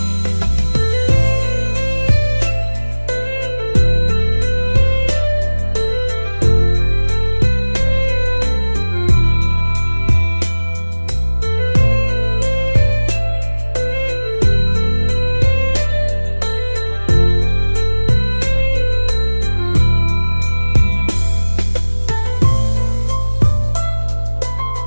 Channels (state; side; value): inverted; both; correlation -1.00